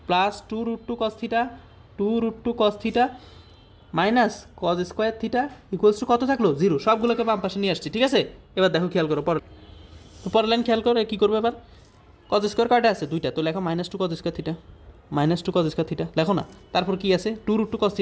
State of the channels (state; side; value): identical; both; correlation 1.00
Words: plus 2 √2 cos θ, 2 √2 cos θ minus cos square theta equals to কত থাকলো? 0। সবগুলোকে বাম পাশে নিয়ে আসছি। ঠিক আছে, এবার দেখো খেয়াল করো, পরের লাইন খেয়াল করো। কী করবে এবার? cos স্কোয়ার কয়টা আছে? 2টা। তো লেখো -2 cos square theta, -2 cos square theta লেখো না। তারপর কি আছে? 2 √2 cos θ